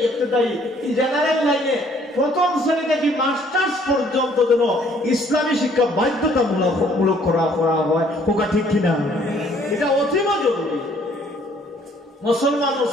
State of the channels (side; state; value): both; normal; correlation 0.61